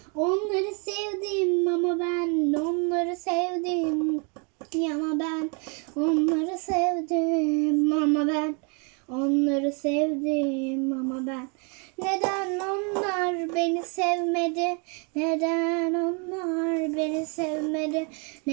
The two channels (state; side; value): quieter; left; 35.7 dB